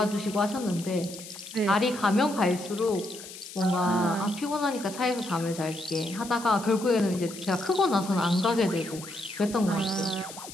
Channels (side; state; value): left; noise; hiss, 14 dB below the sound